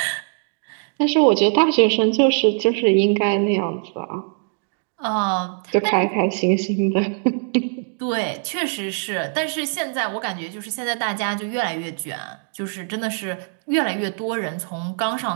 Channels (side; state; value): left; silent; 64 dB below the other